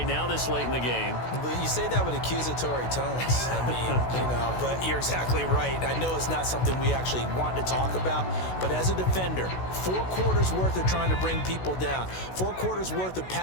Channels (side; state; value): right; late; 16 ms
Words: now this late in the game. But you say that with accusatory tones. I mean, but you're exactly right. I know it's not something we actually want to talk about, but as a defender, 4 quarters worth of trying to bring people down, 4 quarters worth of